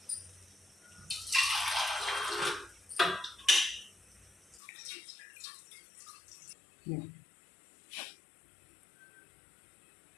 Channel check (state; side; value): drops out; right; at 4.6 s